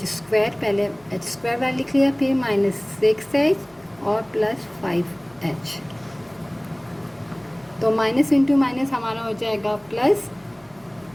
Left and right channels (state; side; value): noise; left; hum, 29 dB below the sound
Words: square, पहले h स्क्वायर वाला लिख लिया, फिर माइनस 6h और प्लस 5h, तो माइनस इंटू माइनस हमारा हो जाएगा प्लस,